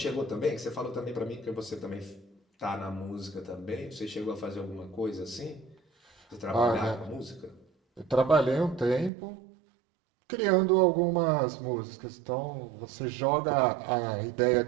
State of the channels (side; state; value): left; drops out; at 9.1 s